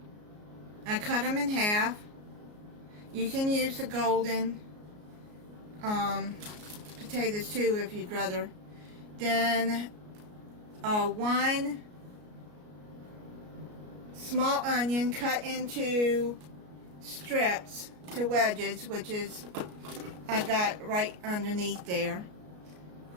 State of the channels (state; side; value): late; left; 33 ms